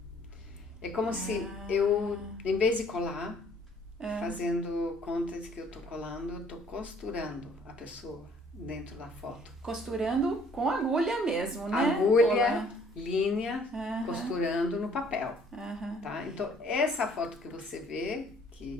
É como se eu, em vez de colar, fazendo conta de que eu tô colando, eu tô costurando a pessoa dentro da foto. Costurando com agulha mesmo, né? Agulha, linha, costurando no papel. Tá? Então, essa foto que você vê,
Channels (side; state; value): both; normal; correlation 0.59